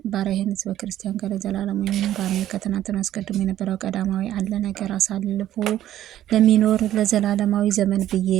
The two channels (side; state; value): left; quieter; 12.5 dB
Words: ባሪያህን ሕዝበ ክርስቲያን ጋር ዘላለም የሚኖር አሜን። ከትናንትና አስቀድሞ የነበረው ቀዳማዊ አለ ነገር አሳልፎ ለሚኖር ለዘላለማዊ ዘመን ብዬ